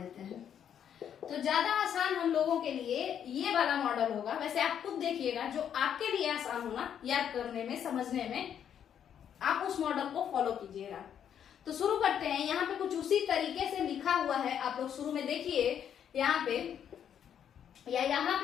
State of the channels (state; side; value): quieter; right; 8.9 dB